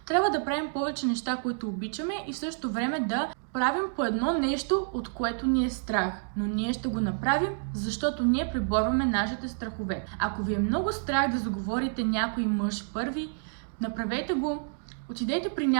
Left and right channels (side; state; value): left; silent; digital silence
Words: Трябва да правим повече неща, които обичаме и в същото време да правим по едно нещо, от което ни е страх. Но ние ще го направим, защото ние преборваме нашите страхове. Ако ви е много страх да заговорите някой мъж първи, направете го. Отидете при